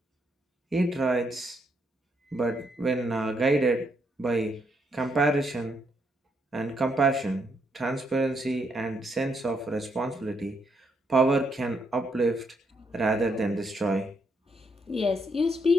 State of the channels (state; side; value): normal; both; correlation 0.76